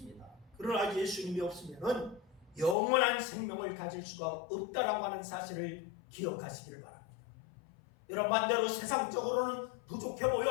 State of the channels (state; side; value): drops out; right; at 2.8 s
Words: 그러나 예수님이 없으면 영원한 생명을 가질 수가 없다라고 하는 사실을 기억하시기를 바랍니다. 여러분, 반대로 세상적으로는 부족해